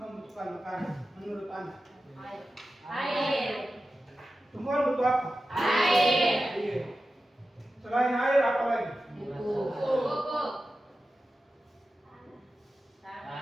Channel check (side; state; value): both; normal; correlation 0.93